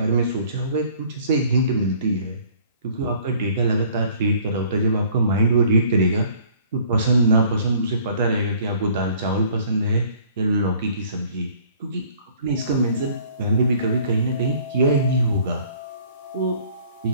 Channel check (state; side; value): inverted; both; correlation -0.55